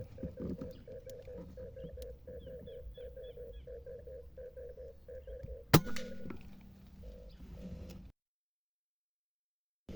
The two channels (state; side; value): identical; both; correlation 1.00